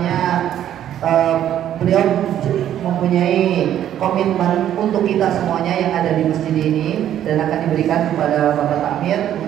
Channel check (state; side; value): quieter; left; 11.0 dB